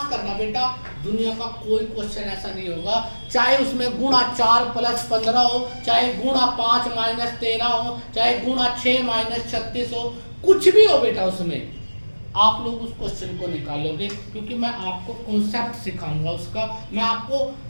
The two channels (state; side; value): inverted; both; correlation -1.00